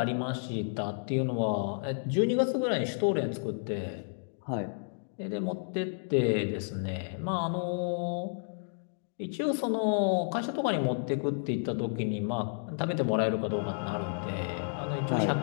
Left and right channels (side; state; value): right; silent; digital silence